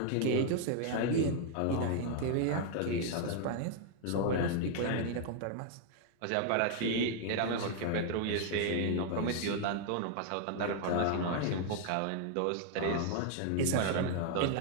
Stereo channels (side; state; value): both; different; correlation 0.00